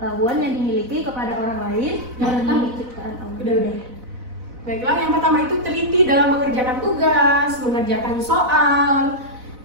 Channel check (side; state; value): left; late; 4.0 ms